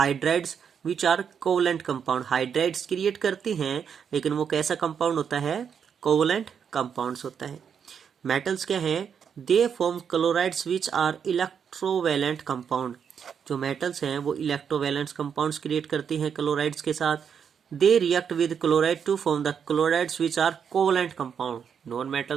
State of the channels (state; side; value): quieter; left; 7.3 dB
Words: which are covalent compound. Hydrides create करती हैं लेकिन वो कैसा कंपाउंड होता है, कोवलेंट कंपाउंड्स होता है। मेटल्स क्या है, they form chlorides which are electrovalent compound. जो मेटल्स हैं वो इलेक्ट्रोवैलेंट कंपाउंड्स क्रिएट करती हैं क्लोराइड्स के साथ। They react with chloride to form the chlorides which are covalent compound. Non